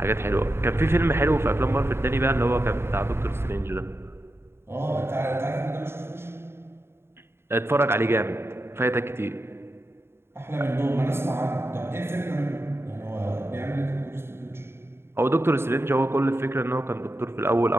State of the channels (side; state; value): left; late; 0.12 ms